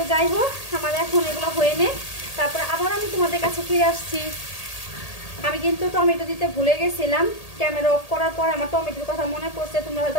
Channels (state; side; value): late; right; 1.8 ms